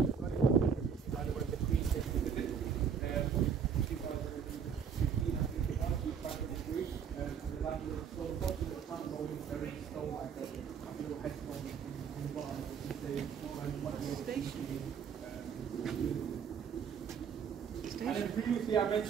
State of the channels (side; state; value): left; quieter; 7.1 dB